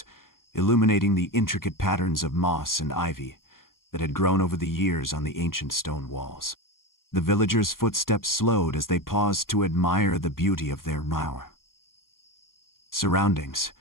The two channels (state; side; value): late; right; 0.91 ms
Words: illuminating the intricate patterns of moss and ivy that had grown over the years on the ancient stone walls. The villagers' footsteps slowed as they paused to admire the beauty of their surroundings,